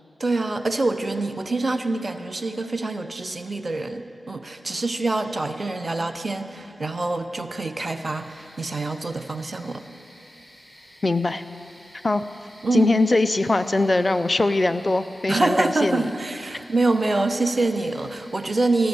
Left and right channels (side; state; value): both; normal; correlation 0.93